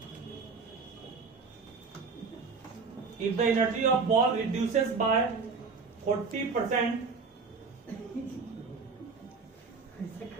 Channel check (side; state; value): left; quieter; 4.7 dB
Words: if the energy of ball reduces by 40%,